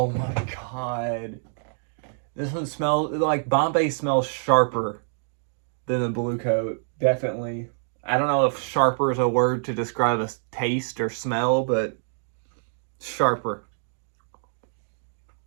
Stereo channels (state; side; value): silent; left; digital silence